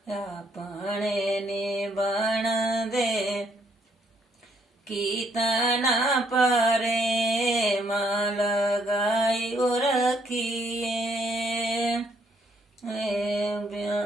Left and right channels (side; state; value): both; normal; correlation 0.70